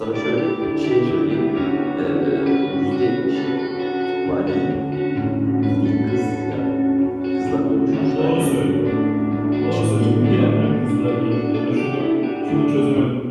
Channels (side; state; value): both; identical; correlation 1.00